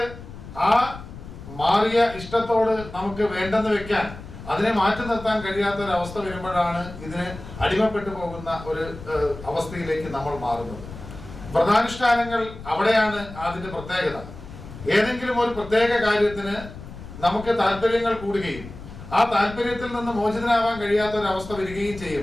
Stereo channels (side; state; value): left; noise; rumble, 14 dB below the sound